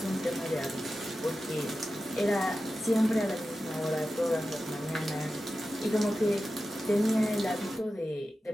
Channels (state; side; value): normal; both; correlation 0.93